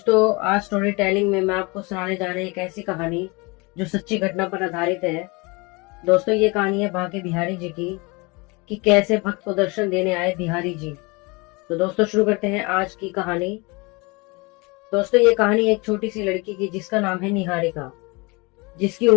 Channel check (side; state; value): right; quieter; 27.2 dB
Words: आज स्टोरी टेलिंग में मैं आपको सुनाने जा रही एक ऐसी कहानी जो सच्ची घटना पर आधारित है। दोस्तों ये कहानी है बांके बिहारी जी की कि कैसे भक्त को दर्शन देने आए बिहारी जी। तो दोस्तों शुरू करते हैं आज की कहानी। दोस्तों ये कहानी एक छोटी सी लड़की की जिसका नाम है निहारिका, जिसकी